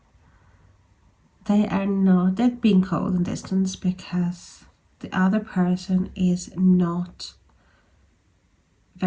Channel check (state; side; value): identical; both; correlation 1.00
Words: that they're being cold and distant because the other person is not